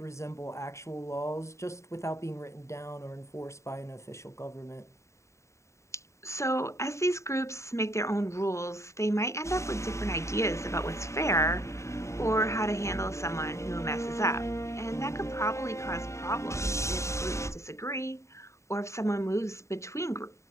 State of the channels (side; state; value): right; late; 0.14 ms